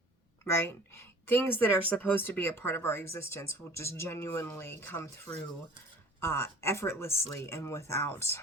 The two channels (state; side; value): normal; both; correlation 0.47